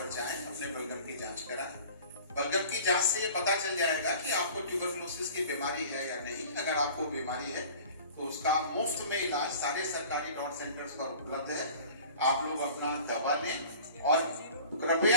जाएं, अपने बलगम की जांच कराएं। बलगम की जांच से ये पता चल जाएगा कि आपको ट्यूबरकुलोसिस की बीमारी है या नहीं। अगर आपको बीमारी है तो उसका मुफ्त में इलाज सारे सरकारी डॉट सेंटर्स पर उपलब्ध है। आप लोग अपना दवा लें और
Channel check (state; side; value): inverted; both; correlation -0.44